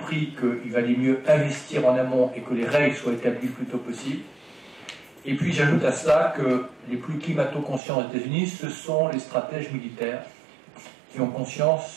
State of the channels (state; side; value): drops out; left; at 7.8 s